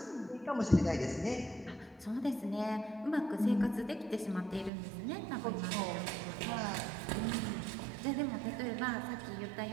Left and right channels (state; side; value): drops out; left; at 4.7 s